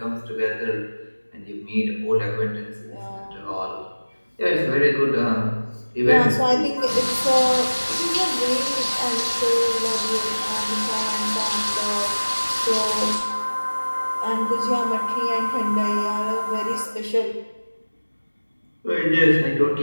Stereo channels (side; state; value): both; inverted; correlation -1.00